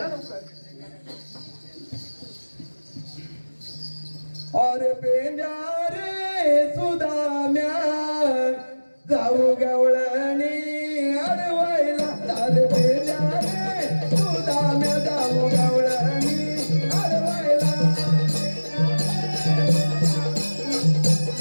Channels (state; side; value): inverted; both; correlation -1.00